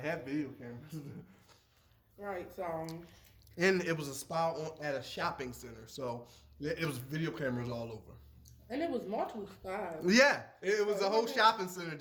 had video cameras. Right, so. And it was a spa at a shopping center, so it was video cameras all over. And it was multiple spas. Yeah, it was a whole shopping center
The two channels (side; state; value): both; identical; correlation 1.00